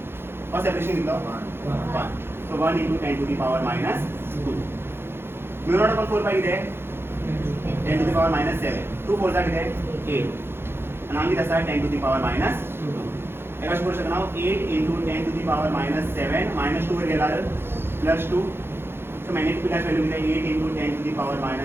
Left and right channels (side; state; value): left; late; 0.11 ms